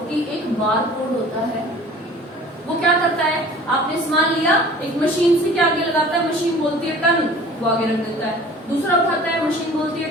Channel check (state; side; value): normal; both; correlation 0.46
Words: कि एक बार कोड होता है, वो क्या करता है, आपने सामान लिया, एक मशीन से क्या आगे लगाता है, मशीन बोलती है टन, वो आगे रख देता है, दूसरा उठाता है, मशीन बोलती है